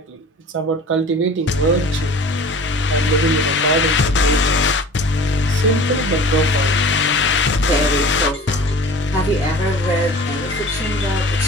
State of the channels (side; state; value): both; normal; correlation 0.42